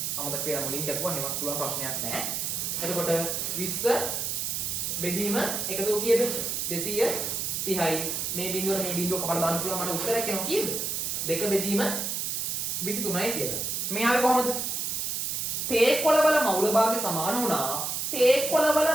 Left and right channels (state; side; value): noise; right; hiss, 1 dB below the sound